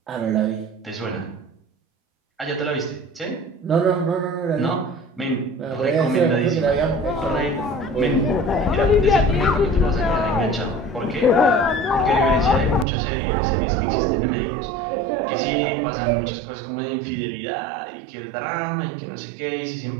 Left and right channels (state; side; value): drops out; left; at 12.9 s